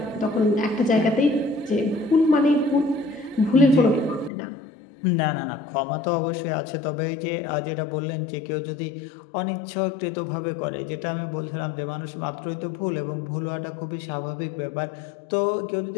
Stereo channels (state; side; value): drops out; right; at 4.3 s